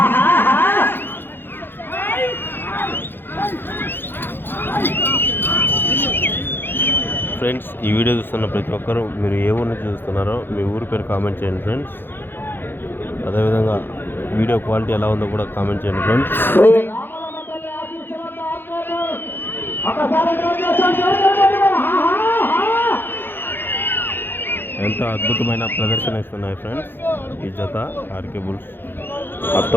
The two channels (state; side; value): late; right; 0.10 ms